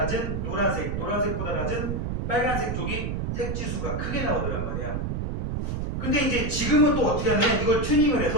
노란색, 노란색보다 낮은 빨간색 쪽이 색지수가 크게 나오더란 말이야. 근데 이제 지금은 또 어떻게 하냐면 이걸 튜닝을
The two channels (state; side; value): noise; right; rumble, 2 dB below the sound